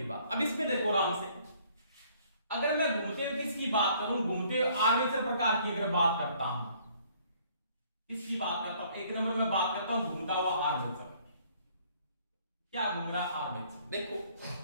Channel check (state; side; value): inverted; both; correlation -0.61